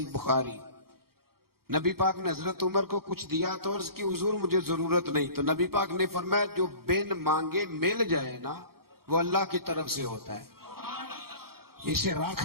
بخاری، نبی پاک نے حضرت عمر کو کچھ دیا تو عرض کی حضور مجھے ضرورت نہیں، تو نبی پاک نے فرمایا جو بن مانگے مل جائے نا وہ اللہ کی طرف سے ہوتا ہے، اسے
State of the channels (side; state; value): left; late; 0.94 ms